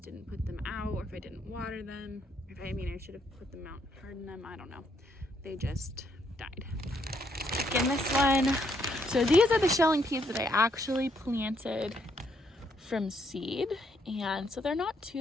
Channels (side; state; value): both; normal; correlation 0.73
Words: didn't put them out or if I didn't water them. I should have put them out, hardened them. I don't know. They just died. Again, this one. So these are the shelling peas that I actually planted from seed, and so they're not